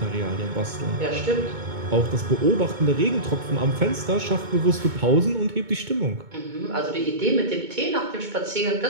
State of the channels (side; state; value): left; late; 2.2 ms